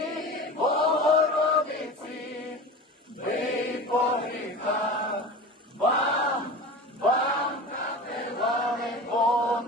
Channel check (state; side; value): normal; both; correlation 0.33